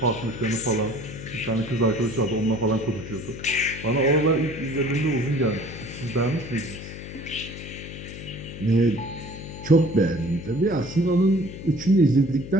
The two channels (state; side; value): noise; left; hum, 11 dB below the sound